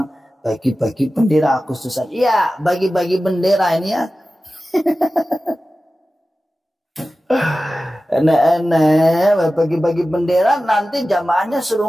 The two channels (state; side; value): normal; both; correlation 0.95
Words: bagi-bagi bendera khususan. Iya, bagi-bagi bendera ini ya. Enak-enak bagi-bagi bendera, nanti jamaahnya suruh